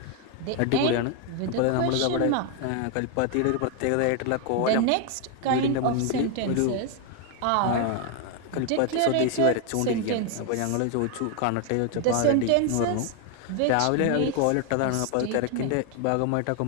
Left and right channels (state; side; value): different; both; correlation 0.01